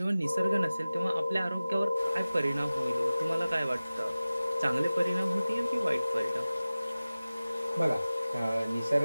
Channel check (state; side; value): inverted; both; correlation -0.97